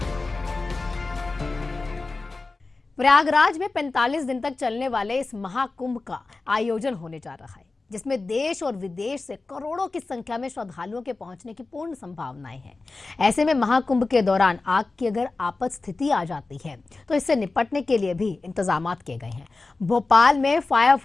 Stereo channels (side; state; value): right; quieter; 3.6 dB